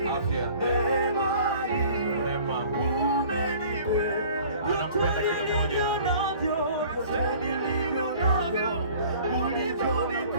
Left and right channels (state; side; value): inverted; both; correlation -0.49